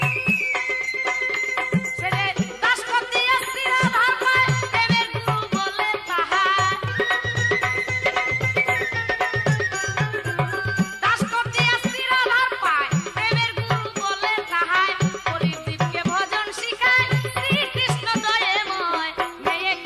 ছেলে দাস করতে আসছি রাধার পায়, প্রেমের গুরু বলে তাহার। দাস করতে আসছি রাধার পায়, প্রেমের গুরু বলে তাহার। হরিদ্বীপকে ভজন শিখায় শ্রীকৃষ্ণ দয়াময়। মেয়ে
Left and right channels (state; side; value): identical; both; correlation 1.00